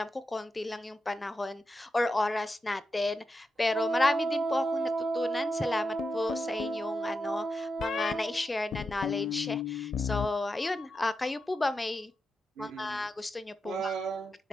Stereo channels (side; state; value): both; normal; correlation 0.88